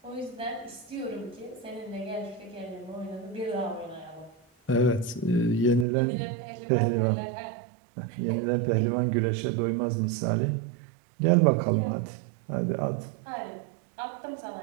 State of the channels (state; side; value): drops out; left; at 5.9 s